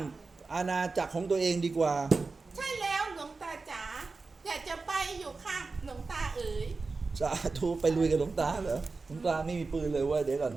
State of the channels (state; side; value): quieter; left; 4.0 dB